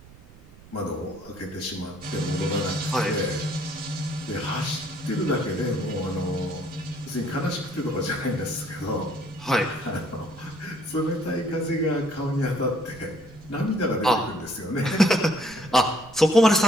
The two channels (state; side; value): noise; right; rumble, 21 dB below the sound